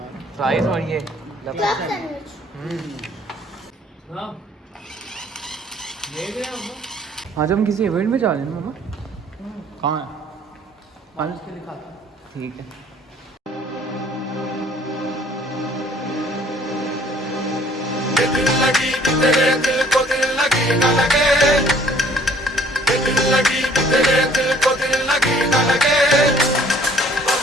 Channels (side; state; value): both; normal; correlation 0.57